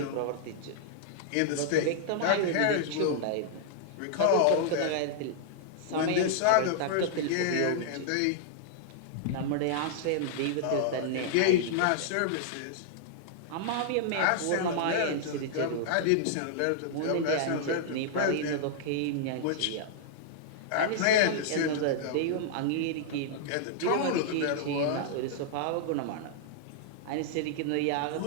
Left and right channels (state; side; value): different; both; correlation -0.01